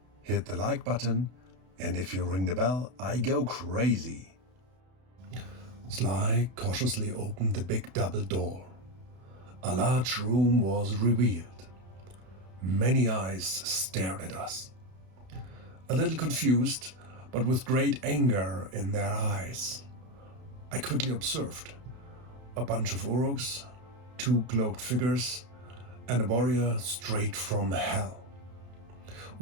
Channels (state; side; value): late; left; 32 ms